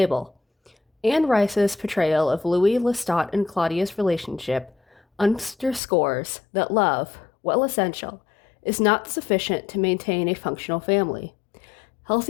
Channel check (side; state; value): right; drops out; at 5.8 s